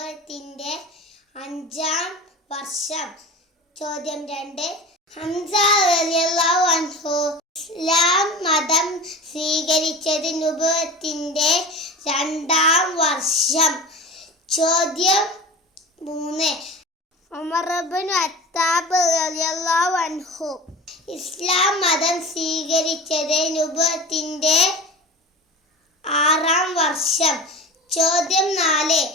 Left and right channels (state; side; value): normal; both; correlation 0.33